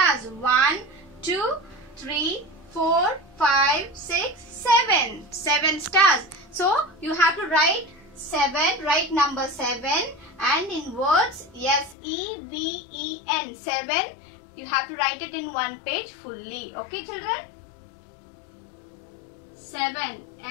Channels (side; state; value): right; drops out; at 12.0 s